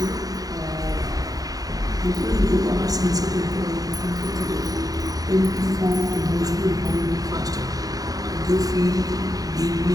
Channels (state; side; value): late; left; 0.18 ms